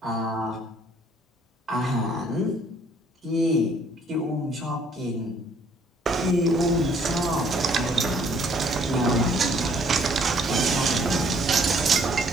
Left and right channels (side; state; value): both; normal; correlation 0.62